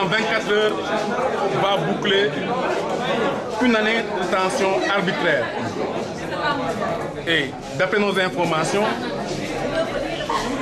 24 heures, va boucler une année de détention arbitraire. Et d'après nos informations,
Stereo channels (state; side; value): identical; both; correlation 1.00